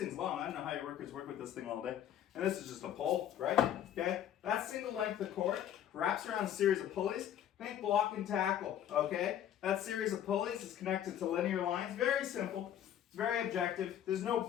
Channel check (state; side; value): quieter; right; 10.6 dB